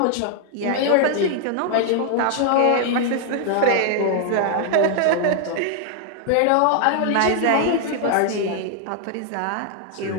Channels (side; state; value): both; different; correlation 0.00